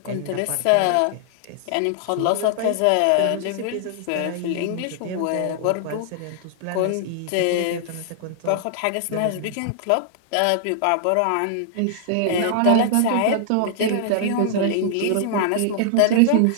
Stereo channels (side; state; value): both; different; correlation -0.01